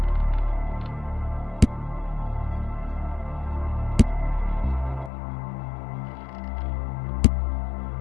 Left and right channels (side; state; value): right; drops out; at 5.1 s